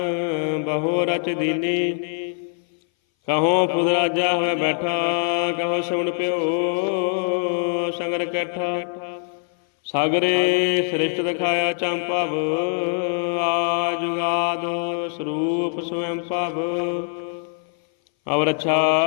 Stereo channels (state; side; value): silent; right; 59 dB below the other